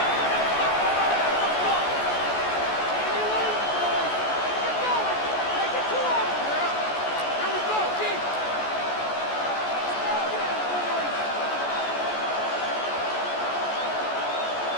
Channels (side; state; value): right; late; 14 ms